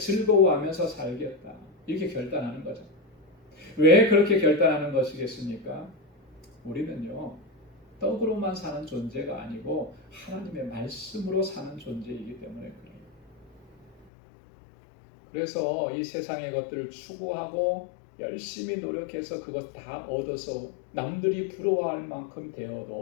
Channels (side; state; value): right; drops out; at 14.1 s